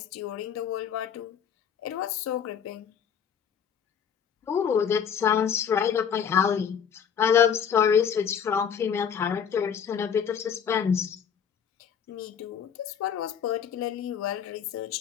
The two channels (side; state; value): right; quieter; 7.8 dB